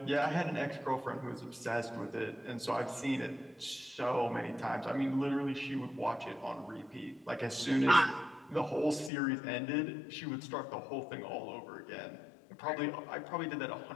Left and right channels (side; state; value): right; drops out; at 9.1 s